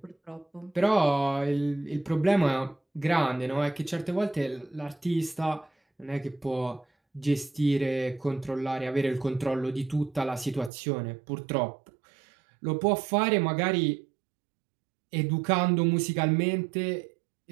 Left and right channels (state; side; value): drops out; left; at 10.7 s